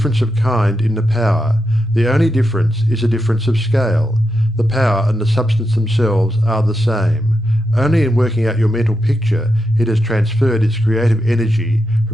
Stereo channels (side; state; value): both; normal; correlation 0.86